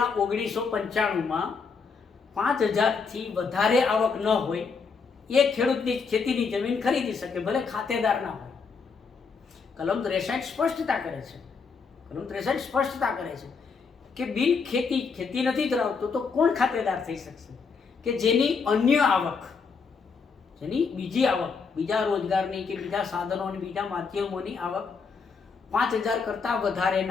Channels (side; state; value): right; quieter; 5.2 dB